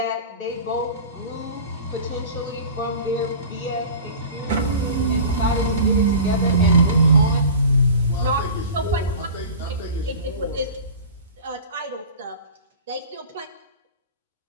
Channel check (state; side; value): inverted; both; correlation -0.37